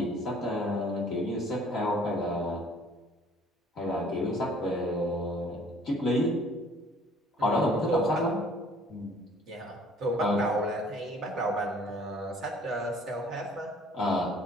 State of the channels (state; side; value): normal; both; correlation 0.56